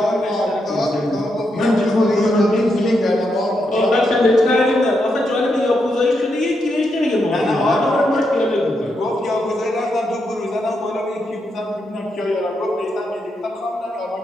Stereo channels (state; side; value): normal; both; correlation 0.82